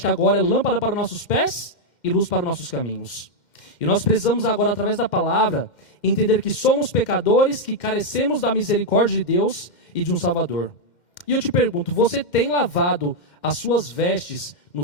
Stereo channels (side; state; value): right; late; 2.1 ms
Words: que agora é lâmpada para os nossos pés e luz para os nossos caminhos. E nós precisamos agora, através da palavra, entender que somos pecadores, que carecemos da misericórdia de Deus e de um Salvador. E eu te pergunto, você tem lavado as suas vestes